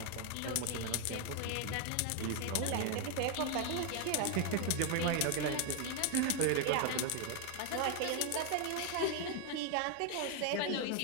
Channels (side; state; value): both; different; correlation 0.01